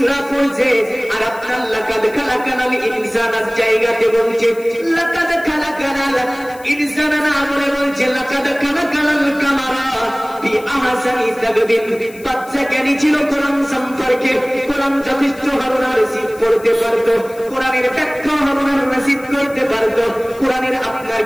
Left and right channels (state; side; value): noise; left; hiss, 23 dB below the sound